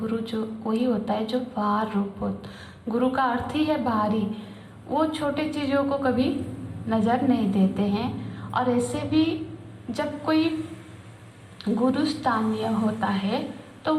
जो वही होता है जो बाहर रूप हो, गुरु का अर्थ ही है बाहरी। वो छोटे चीज़ों को कभी नज़र नहीं देते हैं। और ऐसे भी जब कोई गुरु स्थानीय होता है तो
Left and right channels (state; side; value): identical; both; correlation 1.00